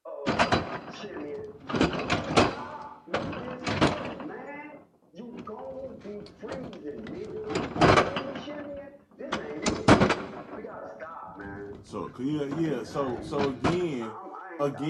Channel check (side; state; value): both; identical; correlation 1.00